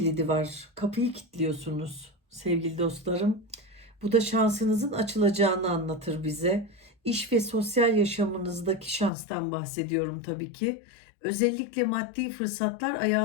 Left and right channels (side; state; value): right; drops out; at 9.1 s